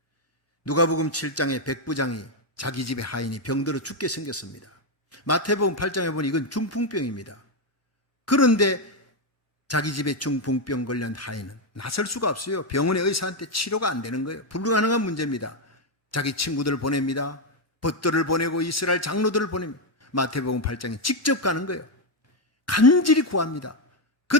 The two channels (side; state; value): both; normal; correlation 0.04